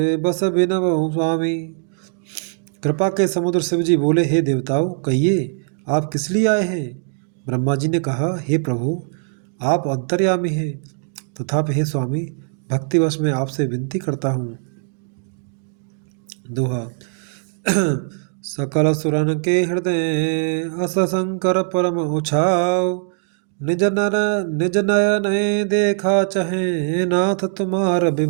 बस बिनवहु स्वामी। कृपा के समुद्र शिवजी बोले, हे देवताओं, कहिए आप किस लिए आए हैं। ब्रह्मा जी ने कहा, हे प्रभु, आप अंतर्यामी हैं, तथापि हे स्वामी, भक्तिवश में आपसे विनती करता हूँ। दोहा। सकल सुरन के हृदय अस शंकर परम उछाव। निज नयन देखा चहे नाथ तुम्हार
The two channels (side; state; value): left; silent; digital silence